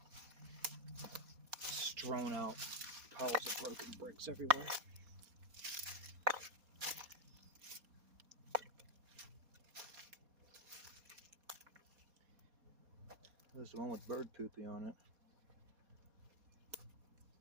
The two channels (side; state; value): left; late; 4.2 ms